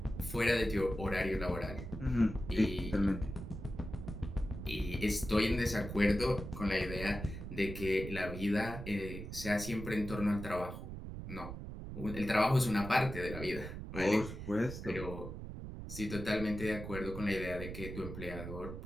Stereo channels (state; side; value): noise; right; rumble, 8 dB below the sound